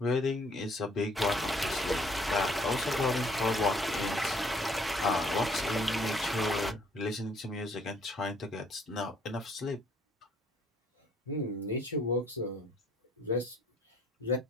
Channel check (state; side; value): normal; both; correlation 0.62